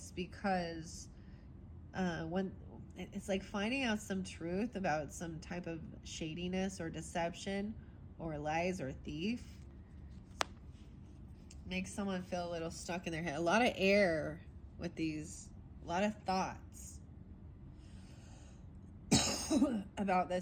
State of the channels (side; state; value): both; identical; correlation 1.00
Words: because when it's like finding out some truth about some type of shadiness or deception or lies or thief makes someone feel a little stuck in their head. A lot of air with these, a lot of thoughts about